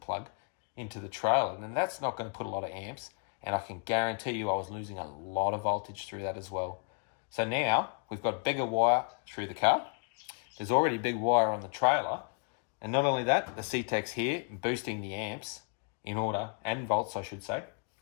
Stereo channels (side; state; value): right; quieter; 39.4 dB